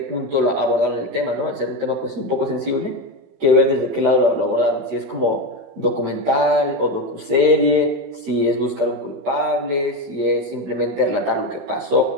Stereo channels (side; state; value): left; late; 14 ms